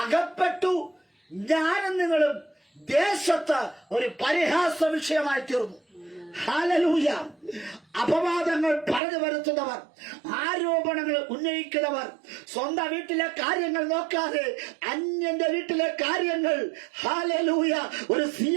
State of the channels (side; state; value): left; drops out; at 9.0 s